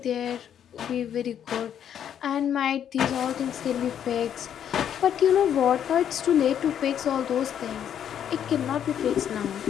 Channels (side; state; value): right; quieter; 9.3 dB